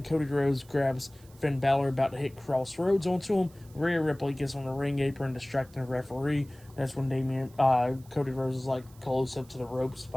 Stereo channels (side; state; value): right; noise; hiss, 26 dB below the sound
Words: Cody Rhodes grabs Finn Bálor about to hit Crossroads onto him. Rhea Ripley gets on the ring apron, distracting the referee. That's when Cody Rhodes is like close up to the ropes